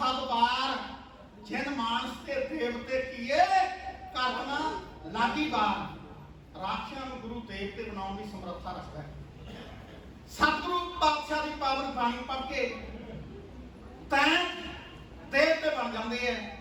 जिन मानस के देवते किए करना लागी बार। राक्षसां नूं गुरु देवते बनाने की समर्था रखता है। सतगुरु पातशाह की पावन बाणी पढ़ के तैं देवते बन जाते हैं,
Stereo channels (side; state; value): both; identical; correlation 1.00